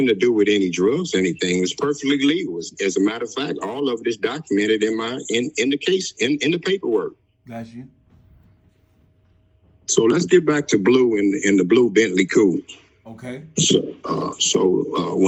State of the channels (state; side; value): identical; both; correlation 1.00